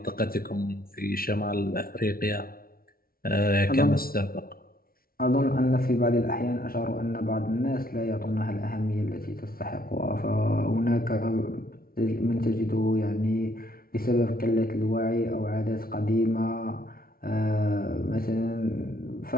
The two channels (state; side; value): late; right; 0.43 ms